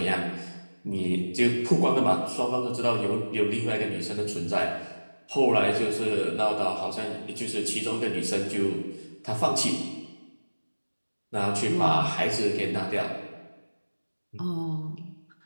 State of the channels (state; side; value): inverted; both; correlation -1.00